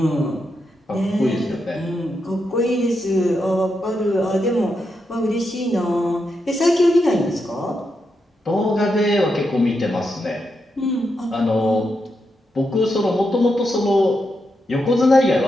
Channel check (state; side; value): normal; both; correlation 0.84